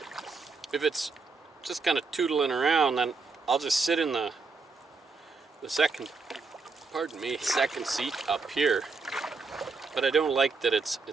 if it's just kind of tootling around, then I'll just sit in the second seat up here. But I don't like that it's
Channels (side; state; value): left; quieter; 4.3 dB